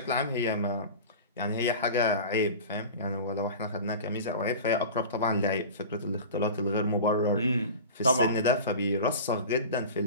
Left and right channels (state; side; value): inverted; both; correlation -0.34